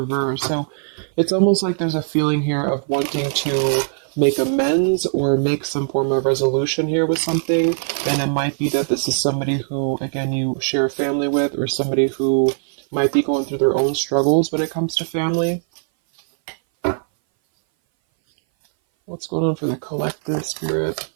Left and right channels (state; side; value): silent; left; 59 dB below the other